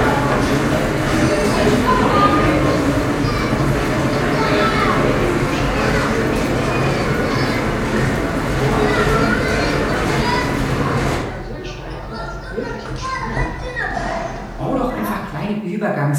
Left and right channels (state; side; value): identical; both; correlation 1.00